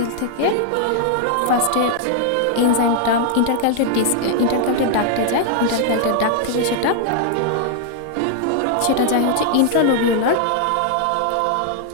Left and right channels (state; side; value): different; both; correlation 0.00